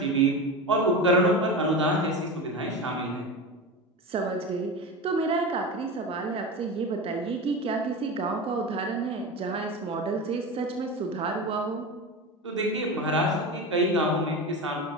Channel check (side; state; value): both; normal; correlation 0.25